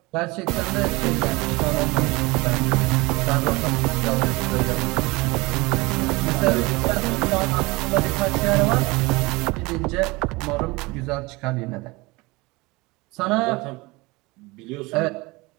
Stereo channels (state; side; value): quieter; left; 23.6 dB